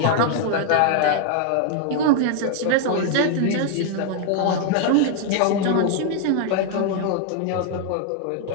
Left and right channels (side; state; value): both; different; correlation 0.00